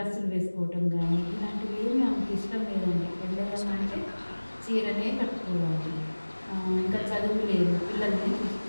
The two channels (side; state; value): both; inverted; correlation -1.00